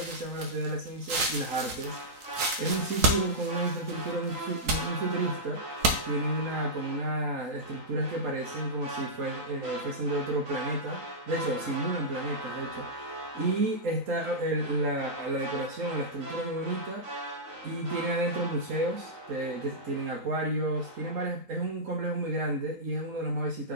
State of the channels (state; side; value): late; left; 3.9 ms